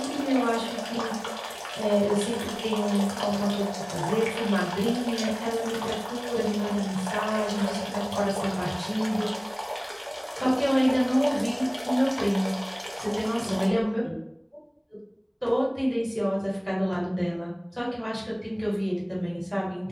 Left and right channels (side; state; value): both; identical; correlation 1.00